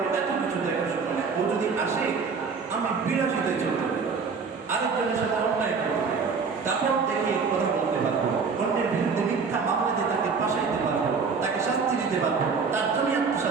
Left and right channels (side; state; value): left; quieter; 5.2 dB